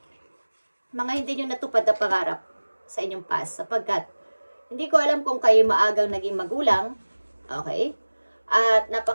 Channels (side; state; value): both; inverted; correlation -1.00